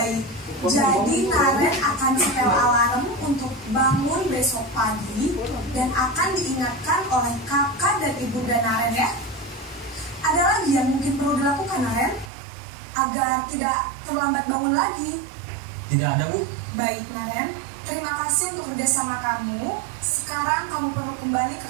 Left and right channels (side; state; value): left; drops out; at 12.3 s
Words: jadi Naren akan setel alarm untuk bangun besok pagi dan akan diingatkan oleh kakak dan ibunda Naren ya. Ada lagi yang mungkin perlu dilakukan, Naren, agar tidak terlambat bangun lagi? Tidak ada Bu. Baik, Naren, terima kasih untuk kerjasama kamu. Sekarang kamu perlu kembali ke